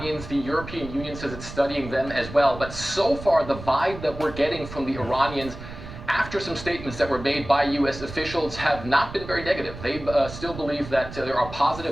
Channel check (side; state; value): right; noise; rumble, 12 dB below the sound